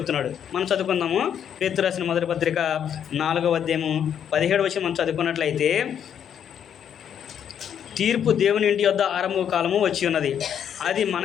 మనం చదువుకుందాము. పేతురు రాసిన మొదటి పత్రిక 4వ అధ్యాయము 17వ వచనం మనం చదువుకున్నట్లయితే, తీర్పు దేవుని ఇంటి యొద్ద ఆరంభ కాలము వచ్చి ఉన్నది, అది మన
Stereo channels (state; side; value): quieter; right; 8.8 dB